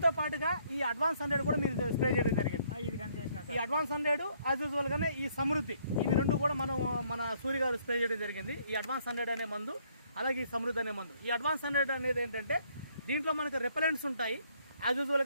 పాటుగా ఈ అడ్వాన్స్ 100 కూడా మీరు స్ప్రే చేయడం జరిగింది. ఇది కానీ చేసిన ఈ అడ్వాన్స్ 100 యాజ్ యూజువల్గానే ఈ సమృద్ధి ఇవి 2 కూడా మన సూర్య గారు స్ప్రే చేయడం జరిగింది. ఈ అడ్వాన్స్ 100 అనే మందు అలాగే ఈ సమృద్ధి అనే మందు. ఈ అడ్వాన్స్ 100 అనేది ఏంటంటే దీంట్లో మనకు రెపలెంట్స్ ఉంటాయి. యాజ్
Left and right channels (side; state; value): both; inverted; correlation -0.67